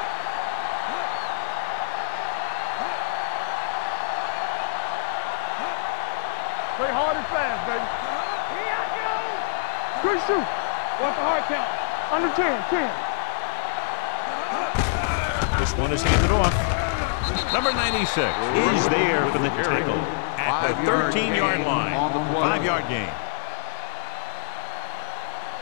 Check it. Play hard and fast, baby. Here I go. Good shoot. What's the hard count? On the 10. This one is handed off. Number 96 is there for the tackle at the 13-yard line. 5-yard gain.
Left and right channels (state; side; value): silent; right; 61 dB below the other